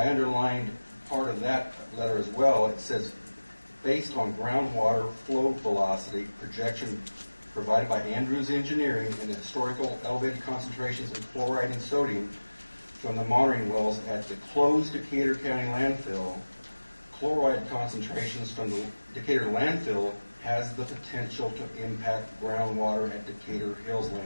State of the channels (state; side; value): inverted; both; correlation -1.00